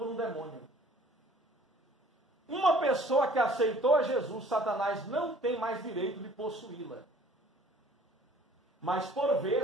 um demônio. Uma pessoa que aceitou a Jesus, Satanás não tem mais direito de possuí-la. Mas por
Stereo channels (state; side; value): normal; both; correlation 0.54